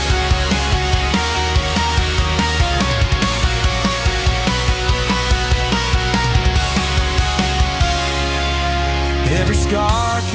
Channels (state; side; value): identical; both; correlation 1.00